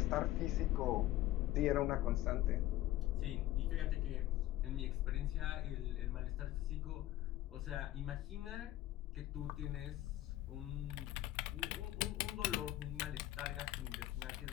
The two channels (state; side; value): quieter; right; 15.2 dB